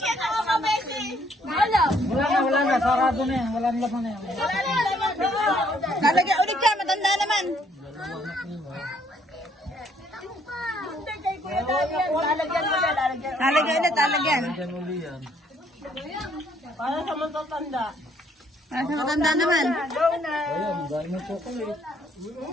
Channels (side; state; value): both; normal; correlation 0.66